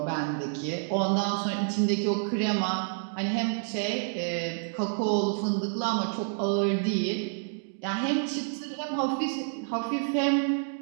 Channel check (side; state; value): left; silent; digital silence